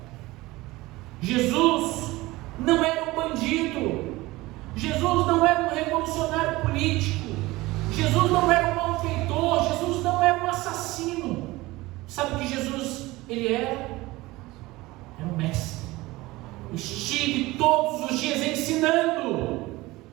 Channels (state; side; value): quieter; left; 19.9 dB